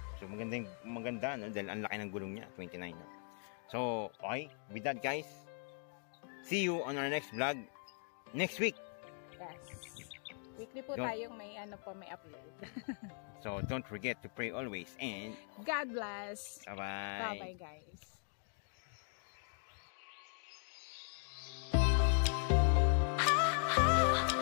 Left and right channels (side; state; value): right; silent; 51 dB below the other